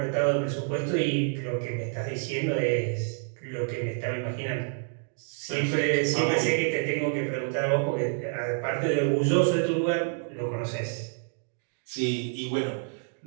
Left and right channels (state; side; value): silent; left; 59 dB below the other